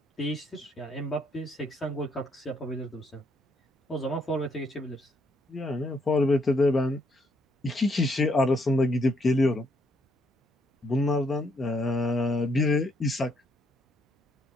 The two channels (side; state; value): both; normal; correlation 0.72